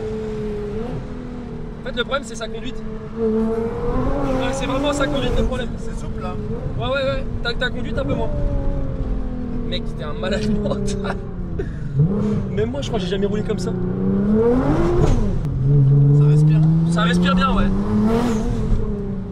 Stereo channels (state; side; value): identical; both; correlation 1.00